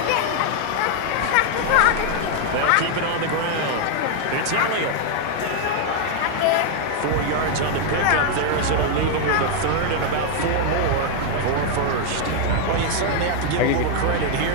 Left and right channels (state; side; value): different; both; correlation 0.00